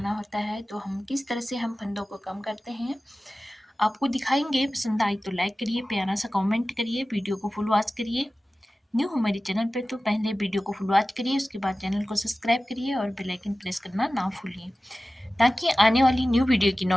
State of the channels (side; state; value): both; normal; correlation 0.96